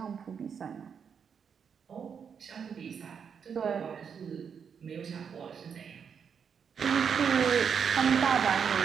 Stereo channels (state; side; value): quieter; left; 6.9 dB